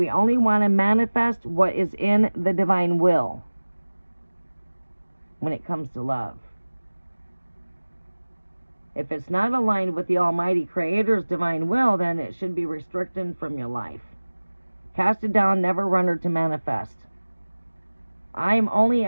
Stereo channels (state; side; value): inverted; both; correlation -1.00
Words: only want to manifest what is in the divine will when it comes to love. If it's not aligned with the Almighty Creator's divine will, then it should be restricted from your life. Cast it down, never run her to manifest. I'm only